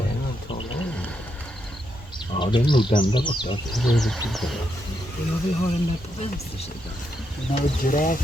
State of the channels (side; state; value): both; normal; correlation 0.81